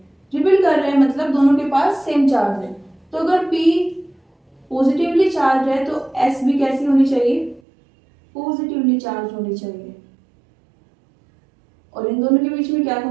रिपेल कर रहे हैं मतलब दोनों के पास सेम चार्ज है। तो अगर P पॉजिटिवली चार्ज है तो S भी कैसी होनी चाहिए, पॉजिटिवली चार्ज होनी चाहिए। और इन दोनों के बीच में क्या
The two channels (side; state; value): left; drops out; at 7.6 s